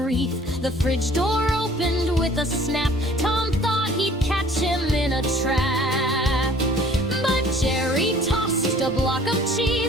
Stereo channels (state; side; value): normal; both; correlation 0.52